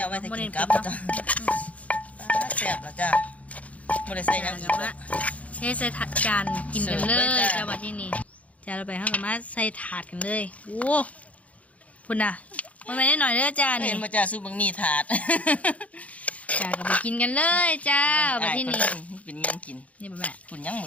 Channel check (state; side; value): late; right; 0.067 ms